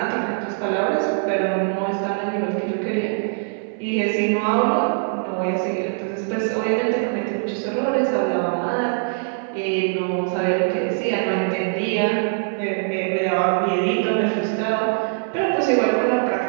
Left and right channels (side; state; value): left; silent; 63 dB below the other